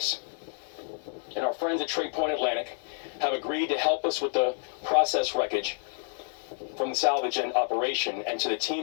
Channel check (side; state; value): right; silent; 59 dB below the other